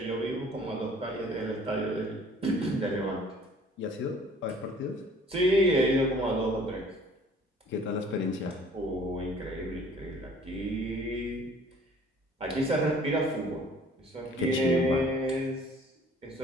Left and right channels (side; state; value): both; normal; correlation 0.53